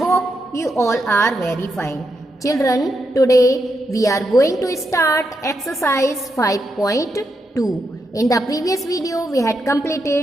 you all are very fine. Children, today we are going to start exercise 5.2. In the previous video, we had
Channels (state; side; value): normal; both; correlation 0.83